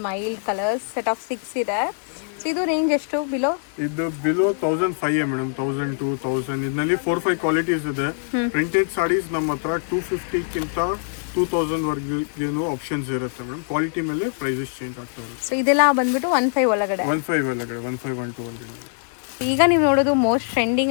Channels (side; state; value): right; silent; digital silence